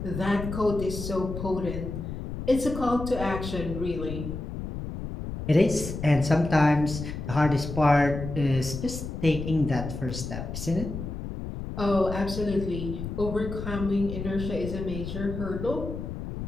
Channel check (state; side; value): noise; left; rumble, 6 dB below the sound